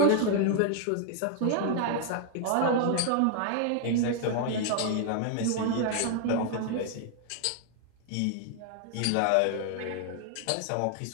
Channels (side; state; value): both; different; correlation 0.00